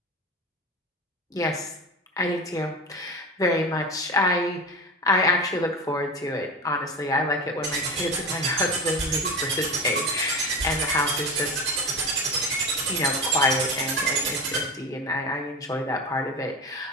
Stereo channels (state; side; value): normal; both; correlation 0.28